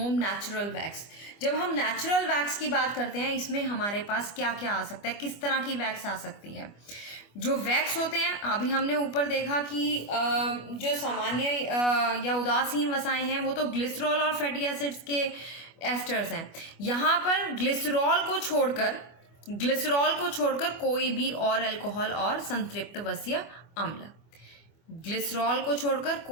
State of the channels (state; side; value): late; right; 25 ms